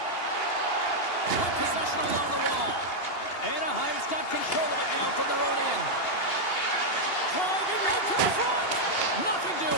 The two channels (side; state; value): right; late; 2.8 ms